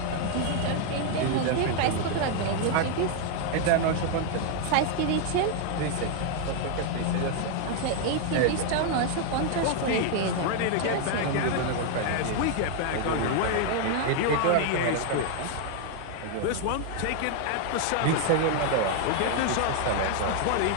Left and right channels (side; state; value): both; different; correlation 0.00